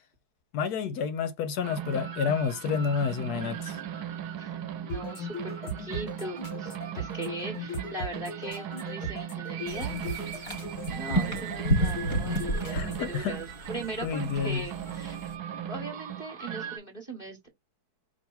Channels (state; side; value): late; right; 4.6 ms